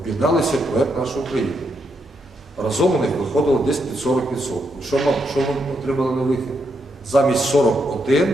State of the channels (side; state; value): both; normal; correlation 0.80